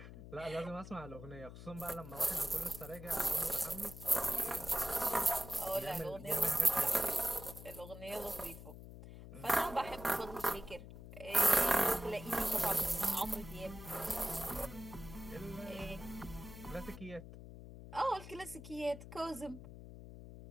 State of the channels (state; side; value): noise; left; hum, 13 dB below the sound